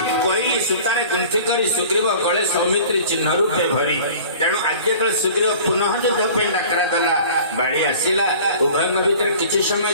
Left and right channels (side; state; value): both; inverted; correlation -0.44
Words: सूतारे गुंथि करी सुग्रीव गले सौमित्री चिन्ह रूपे भरी तेणु आज जो सुग्रीव पुनः युद्ध पे डाकरा देला बाड़ी आसिला उभय भितर किछि